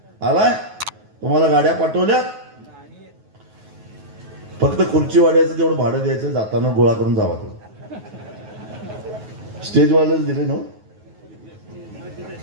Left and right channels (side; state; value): left; late; 9.4 ms